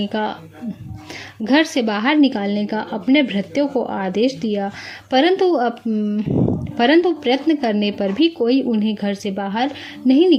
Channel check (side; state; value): both; identical; correlation 1.00